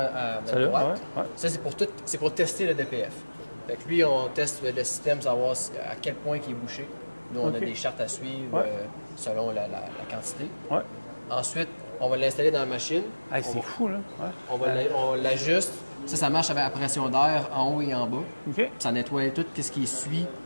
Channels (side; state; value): both; inverted; correlation -1.00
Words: notre Celle-là, droite. ouais, ouais. Ça, c'est pour tester le DPF. Fait que lui, on teste le système, savoir à quel point il est bouché. Nous, on OK. a des chartes à suivre Ouais. selon la quantité. Ouais. Ensuite, on va l'installer dans la machine. Hey, c'est fou, là. Ouais. On l'ajuste. Ça marche avec la pression d'air en haut et en bas. OK. Ça nettoie tout ce qui suit,